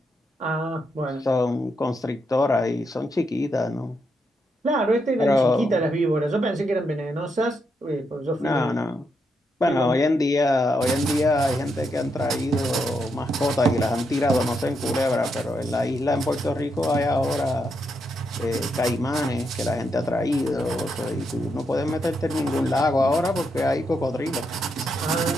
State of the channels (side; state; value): both; normal; correlation 0.81